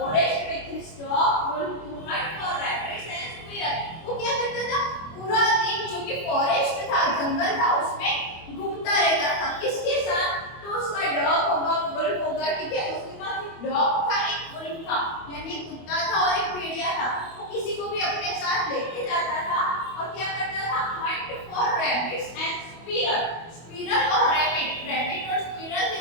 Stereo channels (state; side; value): late; right; 25 ms